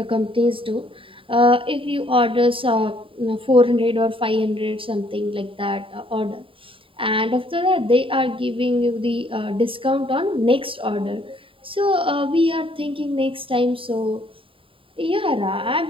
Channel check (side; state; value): left; late; 0.25 ms